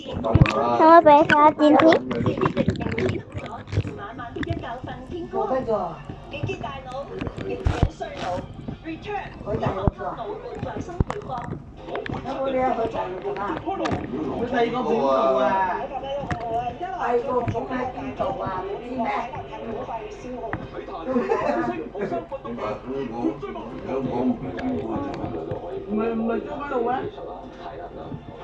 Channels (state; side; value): identical; both; correlation 1.00